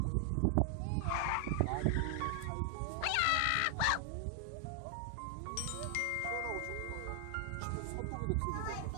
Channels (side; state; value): both; different; correlation 0.00